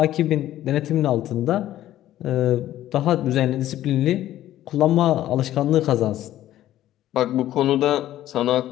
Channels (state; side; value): quieter; right; 13.3 dB